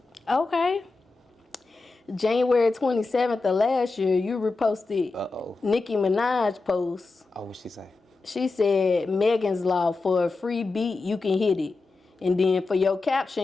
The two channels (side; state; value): right; quieter; 3.7 dB